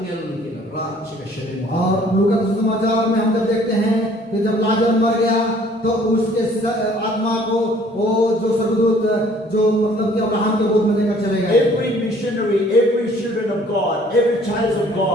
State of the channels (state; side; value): normal; both; correlation 0.57